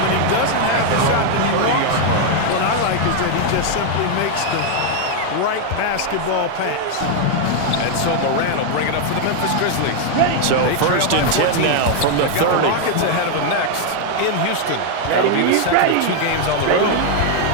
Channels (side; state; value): both; different; correlation 0.00